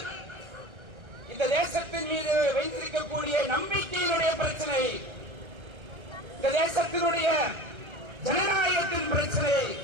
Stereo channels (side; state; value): left; late; 1.3 ms